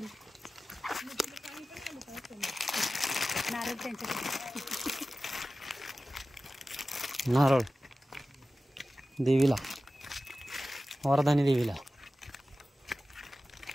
नारळ देवीला. वरदानी देवीला.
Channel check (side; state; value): both; normal; correlation 0.95